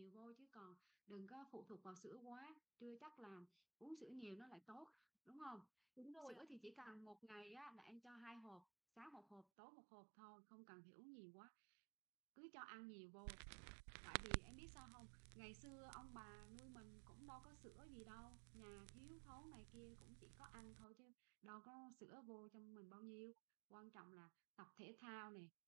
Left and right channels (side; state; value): left; drops out; at 9.5 s